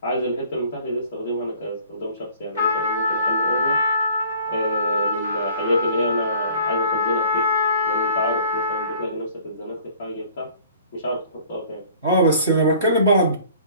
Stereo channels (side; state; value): both; inverted; correlation -0.52